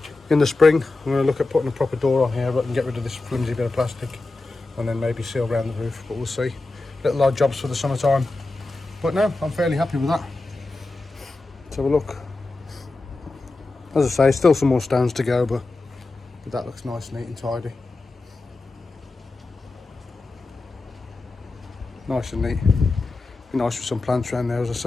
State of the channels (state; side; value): quieter; right; 3.3 dB